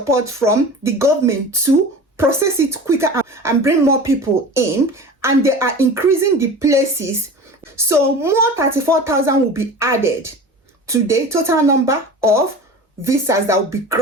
from the government to process it quicker and bring more people in, and they are increasing the places. So more 34,000 will be added to the total number of visas that will be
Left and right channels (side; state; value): both; normal; correlation 0.36